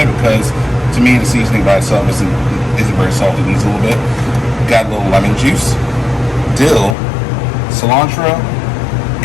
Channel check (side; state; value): right; drops out; at 7.0 s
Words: because, to me, the seasoning by itself isn't very salty. It needs a little bit. Got a little lemon juice, dill, cilantro,